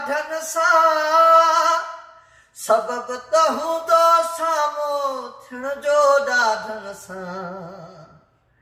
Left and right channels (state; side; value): identical; both; correlation 1.00